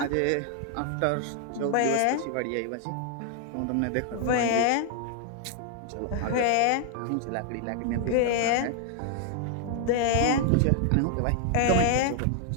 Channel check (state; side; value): different; both; correlation 0.00